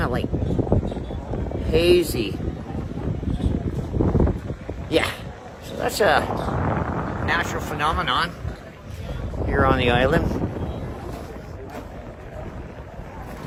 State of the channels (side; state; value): both; identical; correlation 1.00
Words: of like hazy. Yeah, so that's a natural phenomenon here on the island.